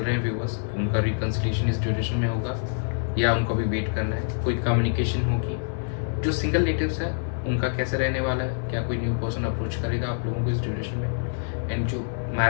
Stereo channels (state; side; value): silent; right; digital silence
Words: हैं व्यूअर्स, उनका रिकन्सिलिएशन इस ड्यूरेशन में होगा या उनको भी वेट करना है? कोई कम्युनिकेशन होगी? जो सिंगल नेटिव्स है उनका कैसे रहने वाला है? क्या कोई न्यू पर्सन अप्रोच करेगा आप लोगों को इस ड्यूरेशन में? एंड जो